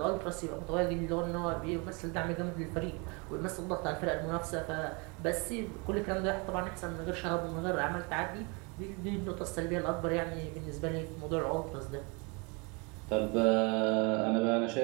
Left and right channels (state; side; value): quieter; left; 30.5 dB